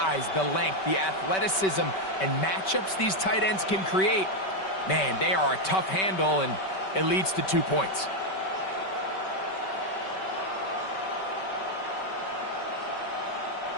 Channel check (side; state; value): right; late; 5.2 ms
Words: the length, the athleticism, and matchups these tight ends can create, man, they are a tough handle, and it leads to 2 points.